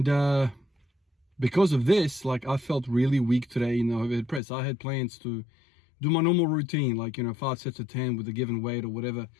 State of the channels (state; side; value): drops out; right; at 4.4 s